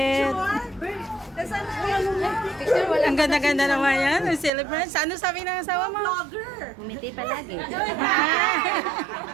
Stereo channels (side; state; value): left; drops out; at 4.5 s